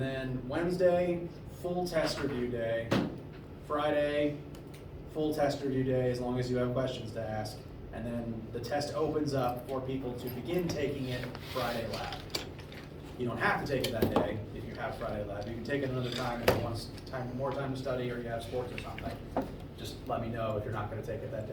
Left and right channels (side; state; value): both; identical; correlation 1.00